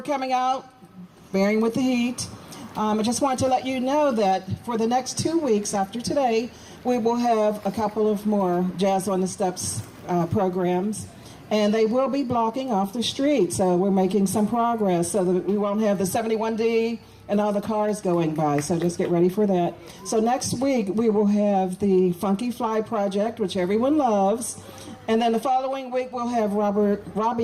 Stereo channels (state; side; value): identical; both; correlation 1.00